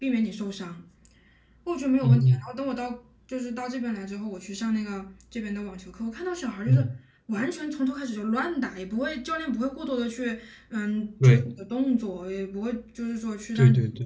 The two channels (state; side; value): identical; both; correlation 1.00